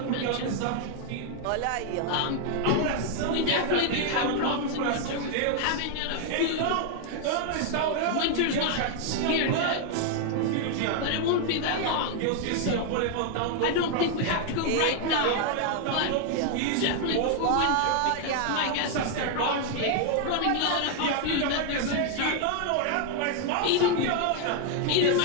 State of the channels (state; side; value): different; both; correlation 0.00